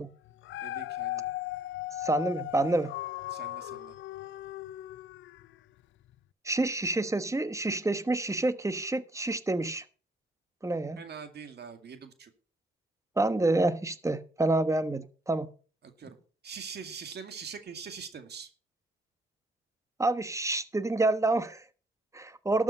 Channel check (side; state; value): both; normal; correlation 0.66